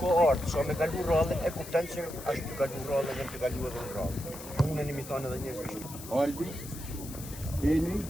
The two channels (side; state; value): left; noise; hiss, 13 dB below the sound